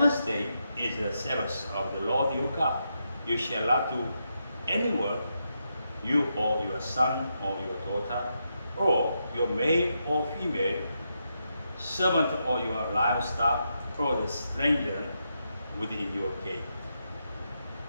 day is the Sabbath of the Lord your God. You shall not do any work, you or your son or your daughter, or your male or female, servant or your livestock, or the stranger within your gate.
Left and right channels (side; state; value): both; inverted; correlation -0.83